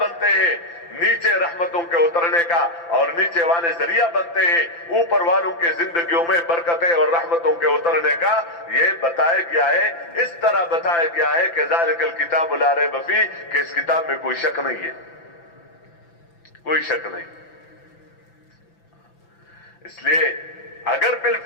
ہیں نیچے رحمتوں کے اترنے کا، اور نیچے والے ذریعہ بنتے ہیں اوپر والوں کے زندگیوں میں برکتیں اور رحمتوں کے اترنے کا۔ یہ بتایا گیا ہے، اس طرح بتایا گیا ہے کہ ذالک الکتاب لا ریب فیہ، کہ اس کتاب میں کوئی شک نہیں ہے، کوئی شک نہیں۔ اس لیے اگر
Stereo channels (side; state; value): right; late; 5.9 ms